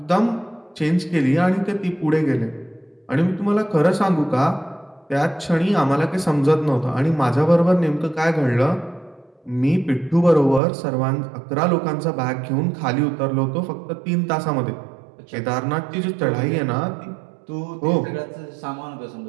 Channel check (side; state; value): left; drops out; at 10.6 s